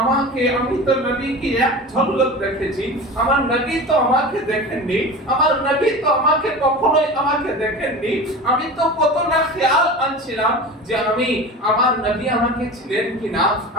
আমি তো নবীকে এক ঝলক দেখেছি, আমার নবী তো আমাকে দেখেননি, আমার নবী তো আমাকে কখনোই আমাকে দেখেননি, আমি তো কত না খেয়াল আনছিলাম যে আমি, আমার নবী আমাকে ছিলেন কিনা,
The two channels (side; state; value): both; normal; correlation 0.32